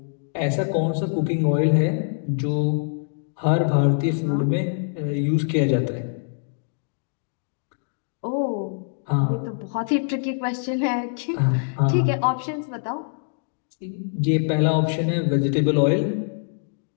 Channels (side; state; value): right; silent; digital silence